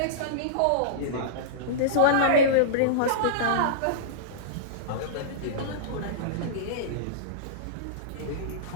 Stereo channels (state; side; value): different; both; correlation -0.04